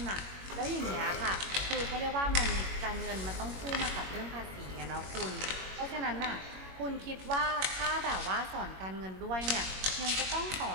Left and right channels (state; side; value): late; left; 21 ms